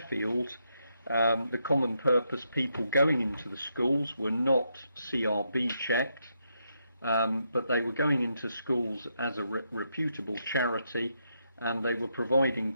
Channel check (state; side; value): inverted; both; correlation -0.80